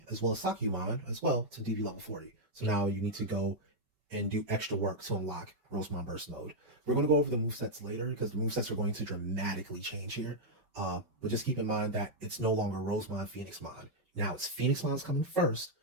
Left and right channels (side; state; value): left; late; 5.2 ms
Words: as well as Sakyumon as well to DV level 40. So now you need to go and do extra work to unlock Rosemon Burst Mode. We're going to go over the movesets later because the movesets are going to dramatically change here. But just keep in mind that it's no longer Rosemon, Phoenixmon. Now it's Phoenixmon's coming first.